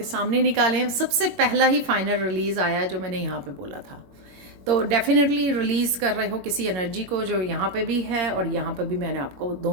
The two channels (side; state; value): left; late; 21 ms